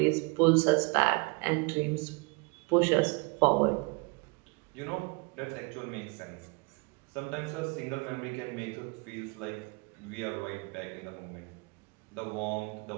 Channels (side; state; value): left; quieter; 30.3 dB